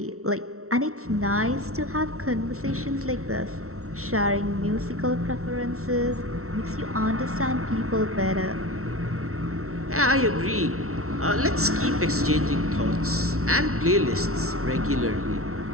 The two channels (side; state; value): left; late; 0.63 ms